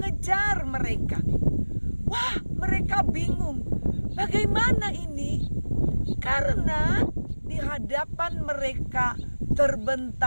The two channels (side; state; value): both; inverted; correlation -1.00